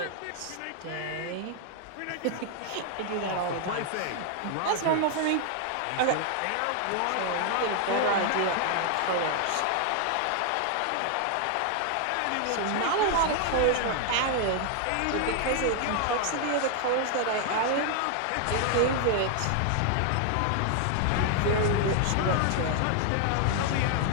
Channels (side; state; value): both; different; correlation 0.00